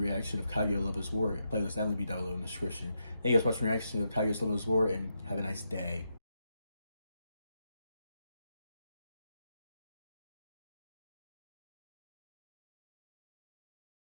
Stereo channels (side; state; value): both; inverted; correlation -0.83